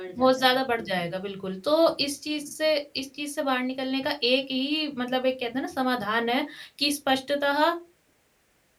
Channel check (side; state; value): both; identical; correlation 1.00